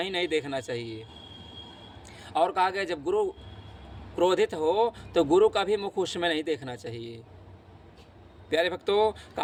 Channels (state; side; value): identical; both; correlation 1.00